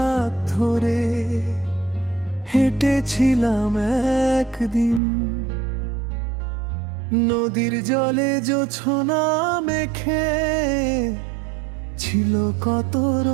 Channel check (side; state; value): left; drops out; at 5.0 s